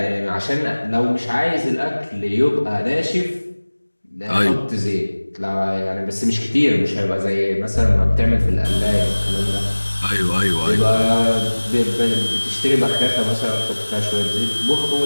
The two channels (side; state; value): both; inverted; correlation -1.00